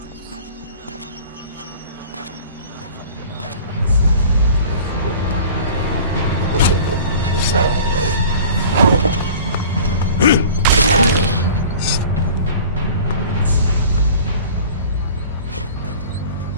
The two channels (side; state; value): both; inverted; correlation -0.43